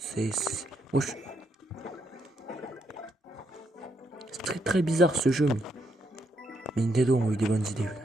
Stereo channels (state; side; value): normal; both; correlation 0.77